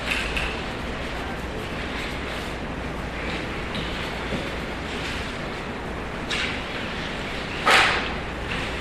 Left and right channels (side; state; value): both; identical; correlation 1.00